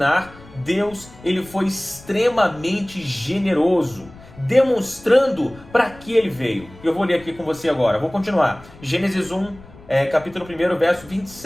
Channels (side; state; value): left; noise; rumble, 21 dB below the sound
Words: Deus, ele foi extremamente generoso, demonstrando para que ele veio. Eu vou ler aqui com você agora, vou continuar. Gênesis 1, capítulo 1, verso